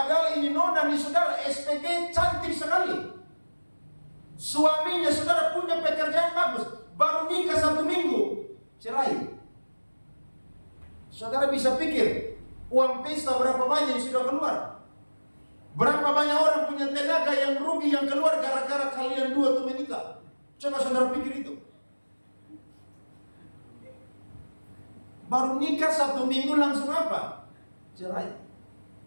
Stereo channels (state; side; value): inverted; both; correlation -1.00